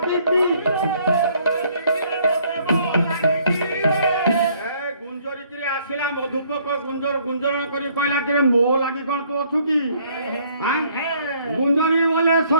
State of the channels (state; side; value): inverted; both; correlation -0.63